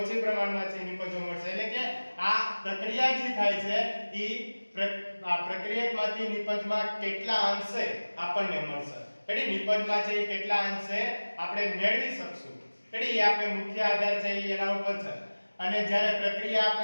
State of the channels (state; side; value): inverted; both; correlation -1.00